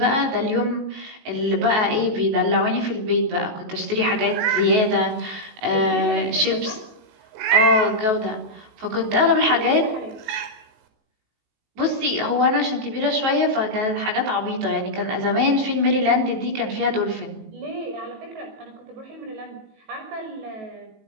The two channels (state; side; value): late; left; 19 ms